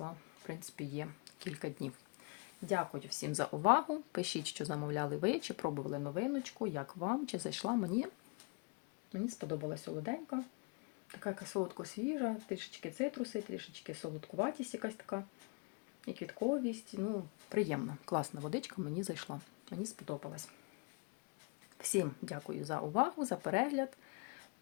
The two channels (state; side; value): quieter; right; 32.8 dB